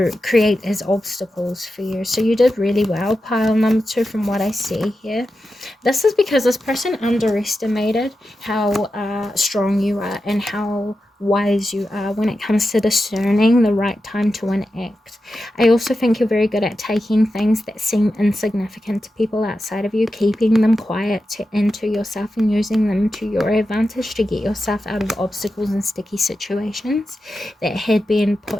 create as obstacles for you. So you did really well, pile number 2, from what I see here. This is because this person underestimated how strong you are and how wise you are when it comes to discerning the right time to enact. I also think you're very good at taking things that seem insignificant to people outside of you, keeping them quiet into yourself, and using them to your advantage to get yourself out of obstacles and sticky situations that had been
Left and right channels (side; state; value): both; normal; correlation 0.90